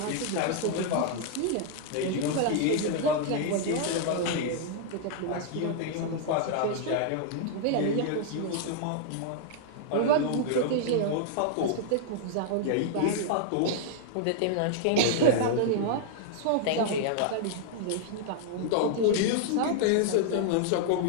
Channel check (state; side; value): different; both; correlation -0.01